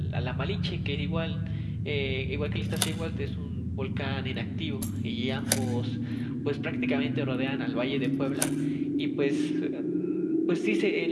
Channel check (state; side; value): identical; both; correlation 1.00